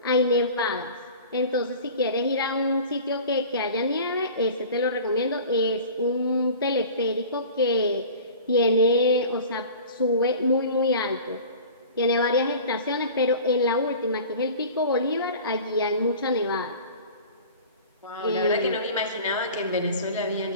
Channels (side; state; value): both; inverted; correlation -0.40